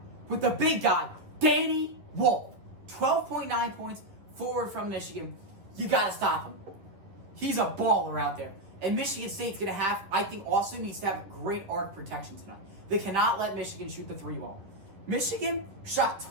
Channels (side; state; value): left; late; 10 ms